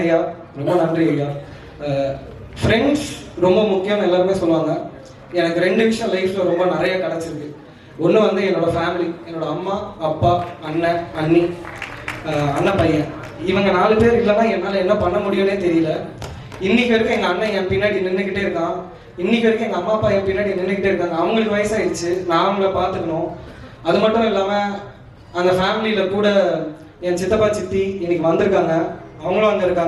ஐயா, ரொம்ப நன்றி ஐயா. ஃப்ரெண்ட்ஸ் ரொம்ப முக்கியம்னு எல்லாருமே சொல்லுவாங்க. எனக்கு 2 விஷயம் லைஃப்பில் ரொம்ப நிறைய கிடச்சிருக்கு. ஒன்று வந்து என்னோட ஃபேமிலி, என்னோட அம்மா அப்பா அண்ணன் அண்ணி அண்ணன் பையன், இவங்க 4 பேர் இல்லைன்னா என்னால் என்ன பண்ண முடியும்னே தெரியல. இன்னைக்கு வரைக்கும் எங்கள் அண்ணன் என் பின்னாடி நின்றுக்கிட்டே இருக்கான். இன்னைக்கு வரைக்கும் எங்கள் அம்மா அப்பா என் பின்னாடி நின்றுக்கிட்டே இருக்காங்க. அவங்களுக்கு வயசாகிடுச்சு, நான் அவங்கள பார்த்துக்கணும். அது மட்டும் இல்லாமல் அந்த ஃபேமிலியில் கூட என் சித்தப்பா சித்தி இன்னைக்கு வந்திருக்காங்க, அவங்களும் அங்கே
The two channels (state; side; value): identical; both; correlation 1.00